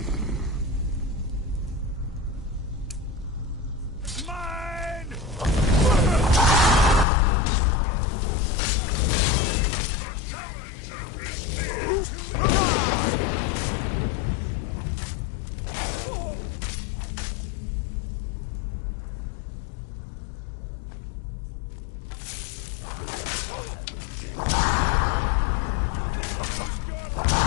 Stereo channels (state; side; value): drops out; right; at 7.1 s